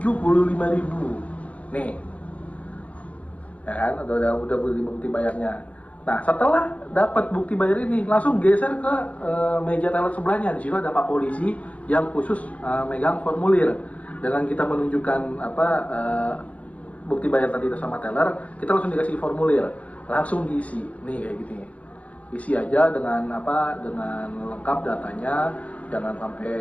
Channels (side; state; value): right; late; 0.066 ms